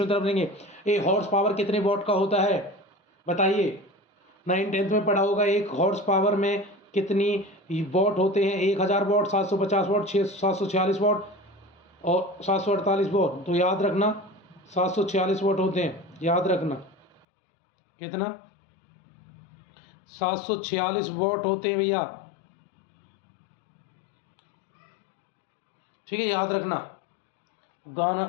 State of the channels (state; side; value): drops out; right; at 17.2 s